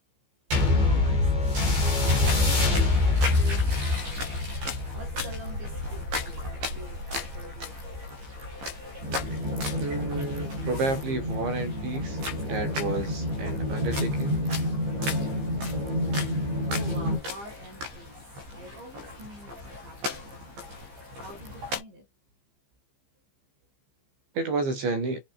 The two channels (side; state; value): left; late; 15 ms